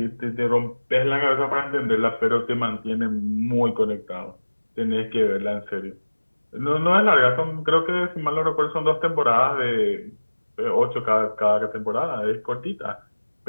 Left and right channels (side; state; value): both; inverted; correlation -1.00